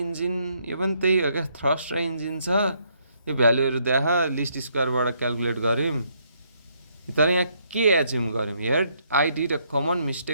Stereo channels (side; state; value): both; inverted; correlation -0.71